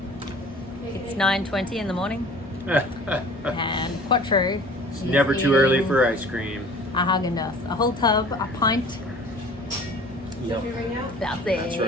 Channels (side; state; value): both; normal; correlation 0.46